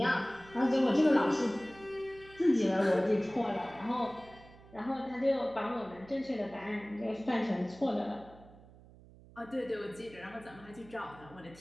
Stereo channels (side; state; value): right; noise; hum, 22 dB below the sound